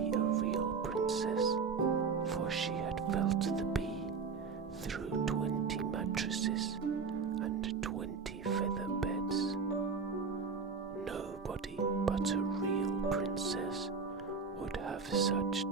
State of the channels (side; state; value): left; quieter; 5.2 dB